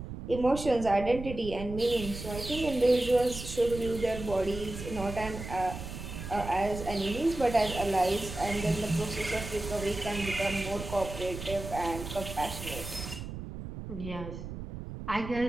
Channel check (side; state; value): right; noise; rumble, 9 dB below the sound